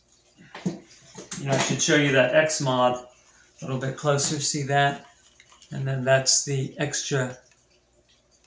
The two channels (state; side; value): identical; both; correlation 1.00